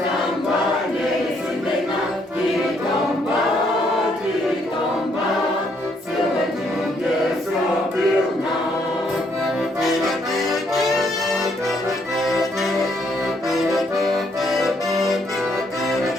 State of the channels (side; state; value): both; normal; correlation 0.71